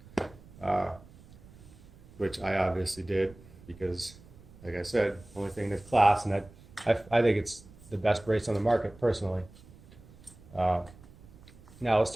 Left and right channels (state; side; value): noise; right; rumble, 22 dB below the sound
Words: which I obviously did because, like I said, only thing in this class, and I think it's the best brace on the market personally. Now let's